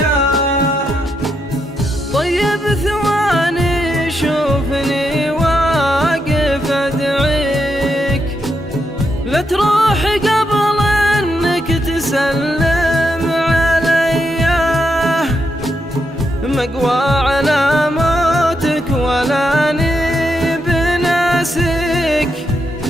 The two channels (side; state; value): both; normal; correlation 0.81